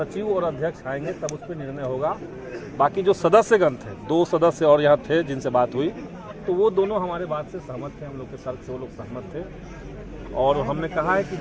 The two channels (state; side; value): identical; both; correlation 1.00